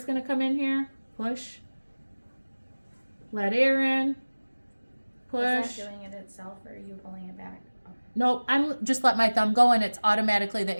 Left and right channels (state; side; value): inverted; both; correlation -1.00